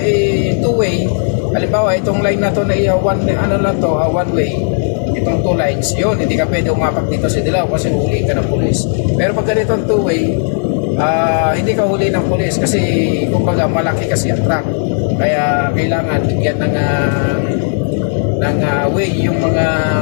two-way, halimbawa itong line na to na one way, itong two lines, yun, hindi ka pwede umapak dito sa dilaw kasi huli ka ng pulis. Pero pag ganitong two-way, hindi ka huli ng pulis kasi kumbaga malaki kasi ang truck, kaya kailangan bigyan ng way yung mga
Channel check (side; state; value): right; silent; digital silence